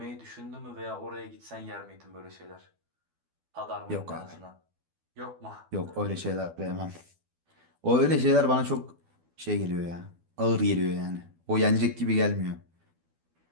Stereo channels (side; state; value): left; late; 12 ms